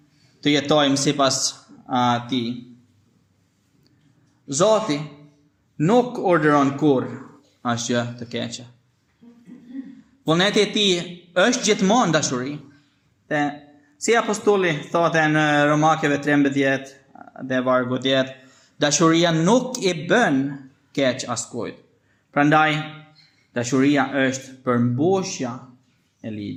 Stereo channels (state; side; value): identical; both; correlation 1.00